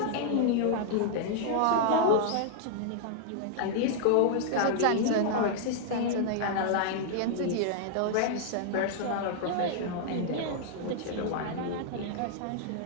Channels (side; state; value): both; different; correlation -0.01